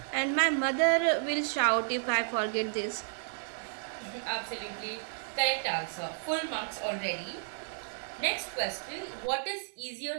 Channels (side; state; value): left; silent; digital silence